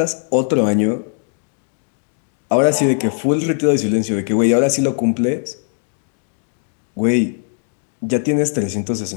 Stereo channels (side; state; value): right; silent; 55 dB below the other